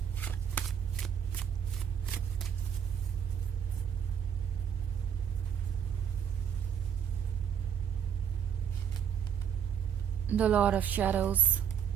The Lord of Shadows,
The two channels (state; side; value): quieter; left; 8.2 dB